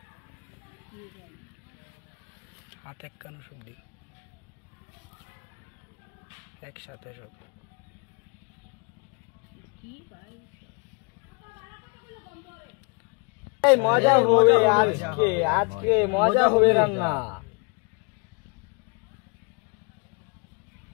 হাতে কানো সব দি একসাথে সব এই মজা হবে আজকে মজা হবে রান্না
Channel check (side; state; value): right; quieter; 33.8 dB